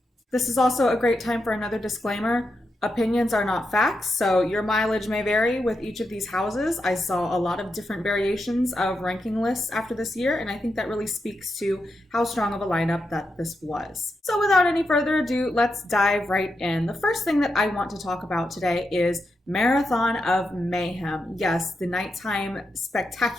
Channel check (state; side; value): normal; both; correlation 0.86